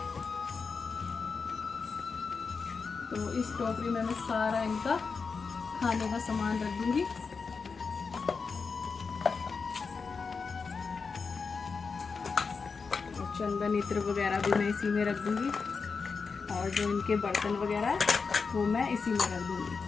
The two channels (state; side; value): quieter; right; 5.0 dB